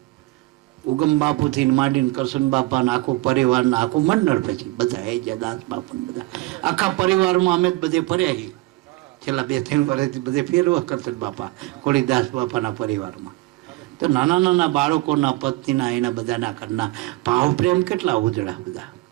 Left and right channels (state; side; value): quieter; left; 20.3 dB